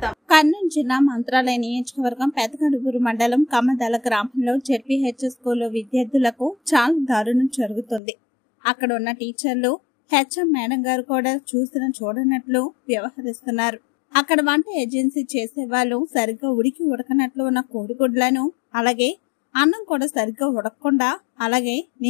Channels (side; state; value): right; drops out; at 8.0 s